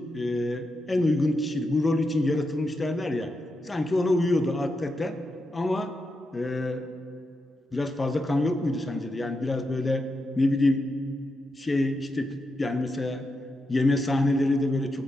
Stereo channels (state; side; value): normal; both; correlation 0.86